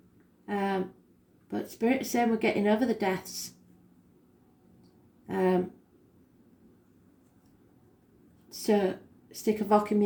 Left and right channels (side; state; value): both; identical; correlation 1.00